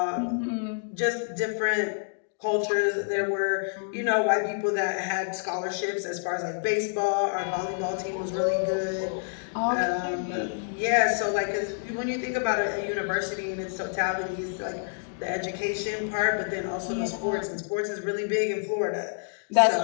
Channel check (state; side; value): silent; right; digital silence